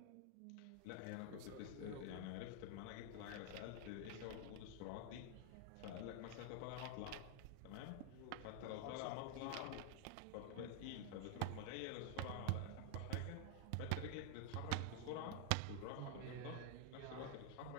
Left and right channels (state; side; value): different; both; correlation 0.00